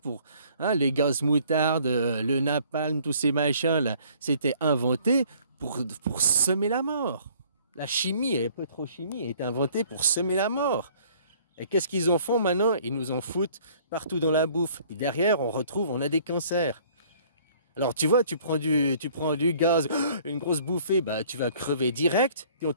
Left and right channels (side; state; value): both; inverted; correlation -0.57